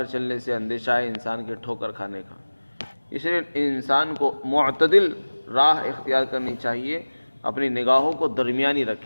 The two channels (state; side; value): inverted; both; correlation -1.00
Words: چلنے سے اندیشہ ہے انسان کے ٹھوکر کھانے کا۔ اس لیے انسان کو معتدل راہ اختیار کرنی چاہیے، اپنی نگاہوں کو درمیانی